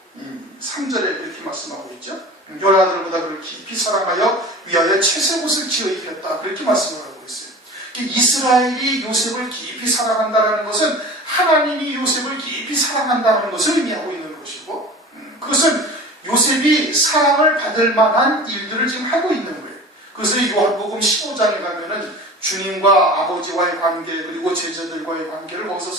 3절에 이렇게 말씀하고 있죠. 열아들보다 그를 깊이 사랑하여 위하여 채색옷을 지어 입혔다. 그렇게 말씀을 하고 있어요. 이스라엘이 요셉을 깊이 사랑한다는 것은 하나님이 요셉을 깊이 사랑한다는 것을 의미하고 있는 것이고, 그것은 요셉이 사랑을 받을 만한 일들을 지금 하고 있는 거예요. 그래서 요한복음 15장에 가면은 주님과 아버지와의 관계, 그리고 제자들과의 관계를 거기서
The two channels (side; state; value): both; normal; correlation 0.37